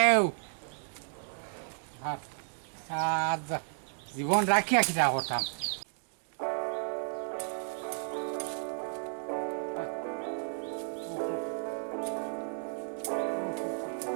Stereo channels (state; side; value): silent; left; digital silence